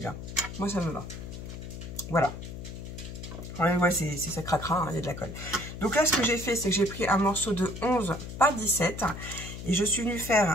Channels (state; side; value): noise; left; hum, 9 dB below the sound